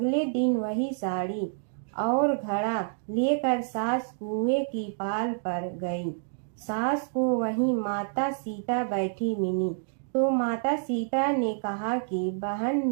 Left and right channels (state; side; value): silent; left; digital silence